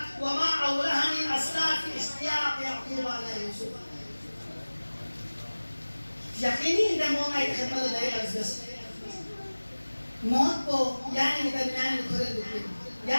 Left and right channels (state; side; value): inverted; both; correlation -1.00